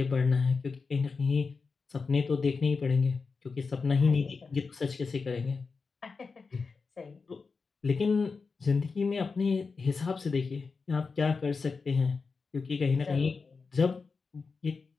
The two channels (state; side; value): quieter; right; 4.7 dB